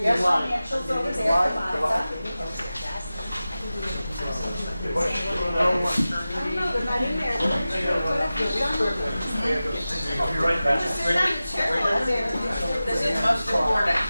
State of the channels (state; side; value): inverted; both; correlation -0.95